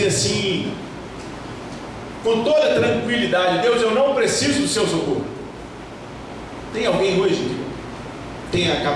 assim, com toda tranquilidade: Deus, eu não preciso do seu socorro? Tem alguém hoje que tem a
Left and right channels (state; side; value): identical; both; correlation 1.00